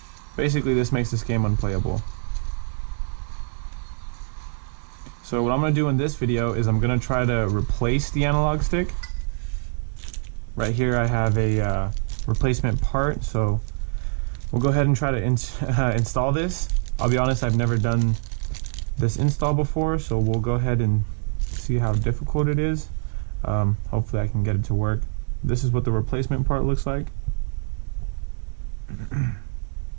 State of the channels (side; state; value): left; silent; 59 dB below the other